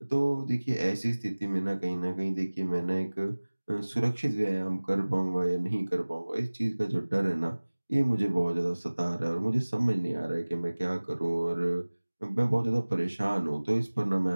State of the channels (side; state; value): both; inverted; correlation -1.00